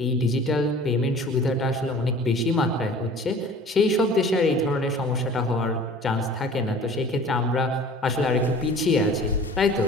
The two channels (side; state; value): both; normal; correlation 0.45